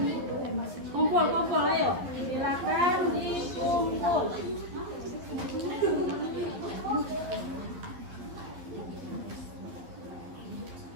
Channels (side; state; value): left; late; 11 ms